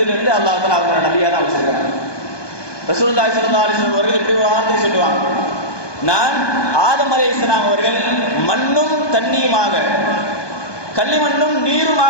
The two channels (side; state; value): right; late; 1.2 ms